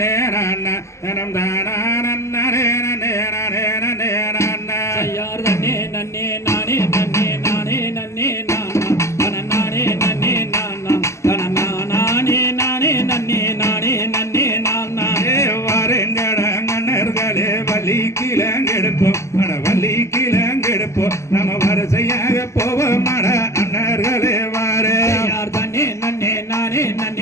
நன்ன தனம் தானா நன்னே நன்னே நன்னே நன்னே நன்ன ஐயார் தன்னே நன்னே நானே நன்னே நானே நன்னே நானா தன நானே நன்னே நானா தன நானே நானே நன்னே நானே நன்னே நானா வாருங்கடங்கண்ணர்களே வள்ளி கிழங்கெடுப்போம் அட வள்ளி கிழங்கெடுப்போம் நம்ம வரிசையாக போவோம் அட அண்ணர்களே வாரே ஐயார் தன்னே நன்னே நானே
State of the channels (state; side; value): late; right; 0.14 ms